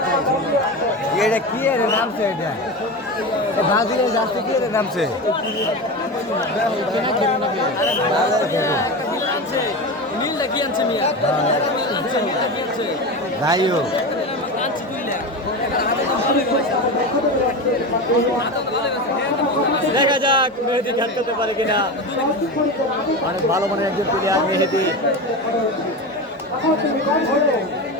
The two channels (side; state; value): both; normal; correlation 0.23